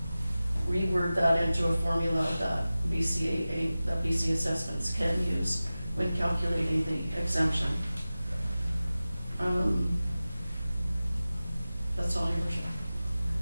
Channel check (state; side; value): inverted; both; correlation -0.96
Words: reword that into a formula that BC assessments can use when calculating the exemption. That's all, Your Worship.